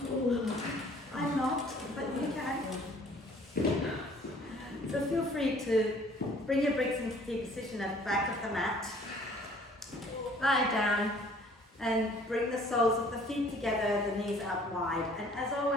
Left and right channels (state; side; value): normal; both; correlation 0.55